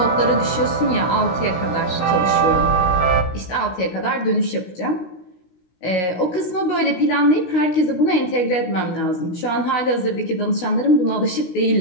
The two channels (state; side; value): late; right; 16 ms